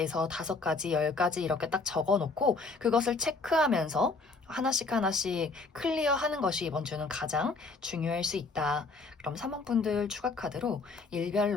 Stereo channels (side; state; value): right; quieter; 3.9 dB